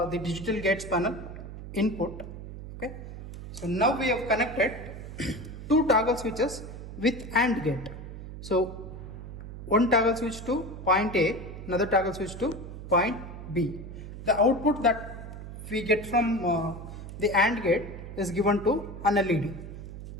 digital gates panel input. Okay. So now we have connected two toggle switches with AND gate. So one toggle switch to point A, another toggle switch to point B. The output that we get from the AND gate is given to an LED.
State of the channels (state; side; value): noise; right; hum, 11 dB below the sound